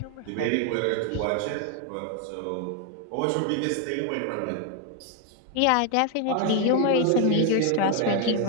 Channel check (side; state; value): both; different; correlation 0.01